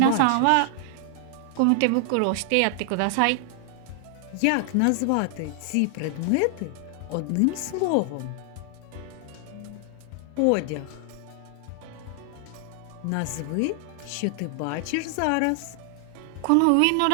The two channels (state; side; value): different; both; correlation 0.00